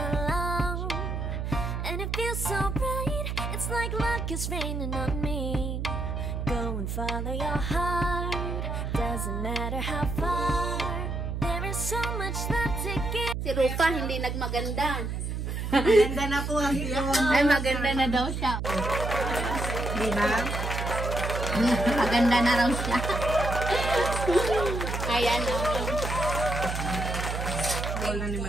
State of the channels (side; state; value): right; noise; hum, 3 dB below the sound